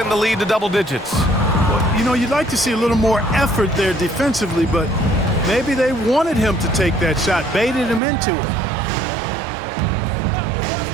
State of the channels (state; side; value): drops out; left; at 8.0 s